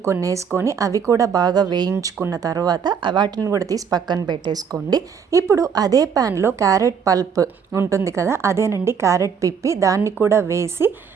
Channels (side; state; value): left; quieter; 6.7 dB